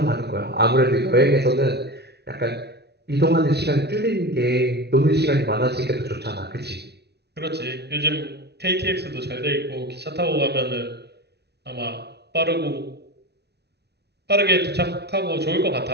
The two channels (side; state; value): left; late; 0.49 ms